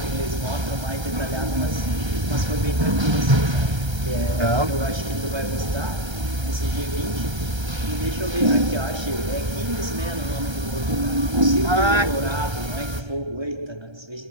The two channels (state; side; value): late; left; 1.3 ms